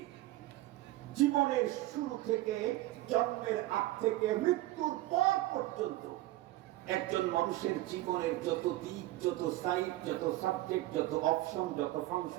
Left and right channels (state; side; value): quieter; left; 16.8 dB